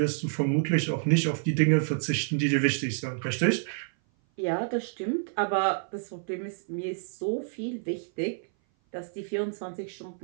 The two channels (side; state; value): left; silent; 57 dB below the other